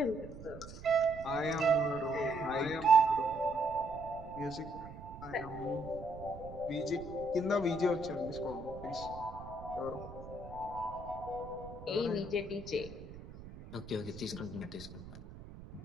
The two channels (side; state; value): right; noise; rumble, 14 dB below the sound